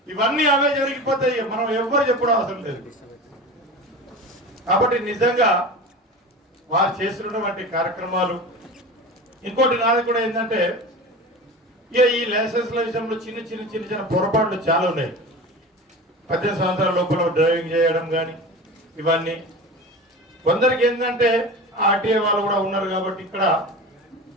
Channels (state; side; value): normal; both; correlation 0.32